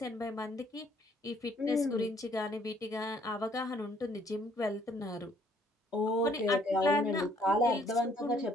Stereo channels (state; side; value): normal; both; correlation 0.63